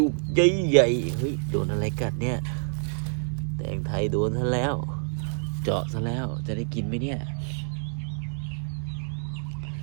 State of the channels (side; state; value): left; silent; 60 dB below the other